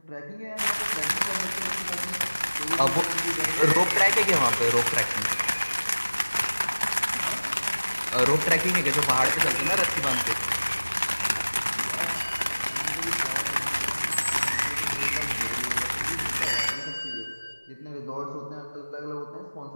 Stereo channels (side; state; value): both; inverted; correlation -1.00